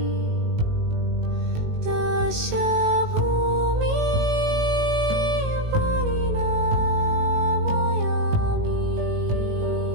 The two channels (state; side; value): late; left; 19 ms